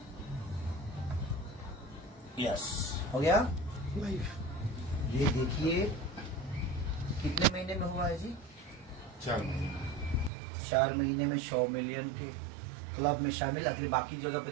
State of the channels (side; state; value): left; drops out; at 10.3 s